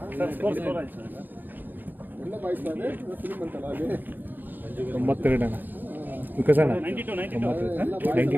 ಸ್ಕೋರ್ ಎಲ್ಲ ಬಾಯಿಸ್ತಾರೆ ಫಿಲ್ಮ್ ಅಂತಲ್ಲ ಅಲ್ಲಿ 92 ವಿಕಸಣ 92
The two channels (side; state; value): left; late; 0.089 ms